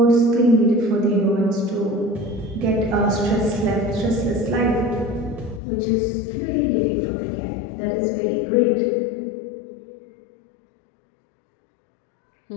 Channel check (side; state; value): right; drops out; at 5.6 s